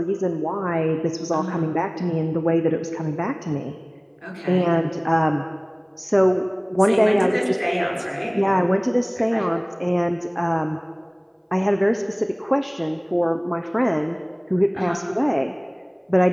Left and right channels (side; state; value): both; identical; correlation 1.00